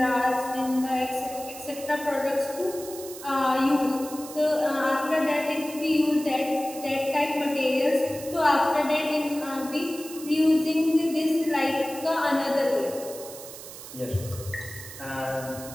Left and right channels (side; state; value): right; noise; hiss, 14 dB below the sound